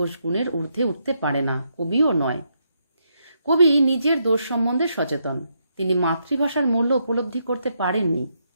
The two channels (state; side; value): inverted; both; correlation -0.79